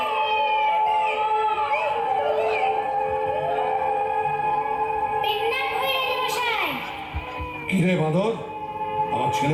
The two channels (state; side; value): identical; both; correlation 1.00